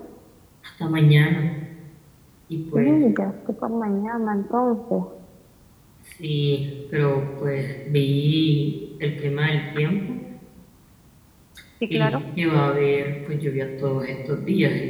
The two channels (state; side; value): identical; both; correlation 1.00